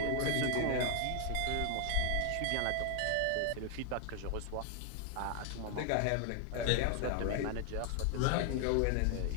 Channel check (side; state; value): both; different; correlation 0.00